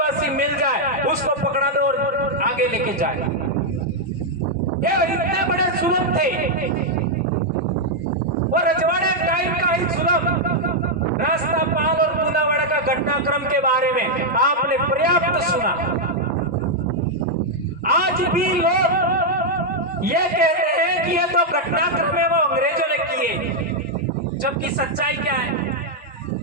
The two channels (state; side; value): normal; both; correlation -0.02